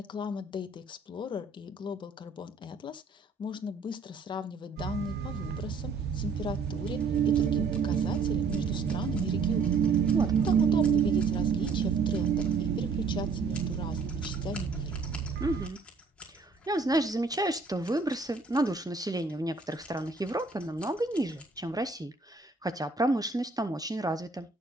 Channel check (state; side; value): quieter; left; 4.3 dB